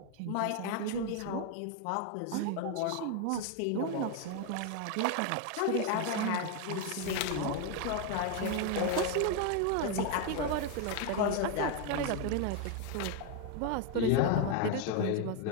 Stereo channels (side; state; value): both; different; correlation 0.01